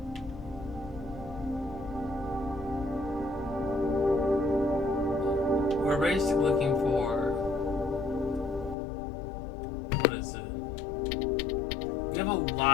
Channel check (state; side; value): drops out; right; at 8.8 s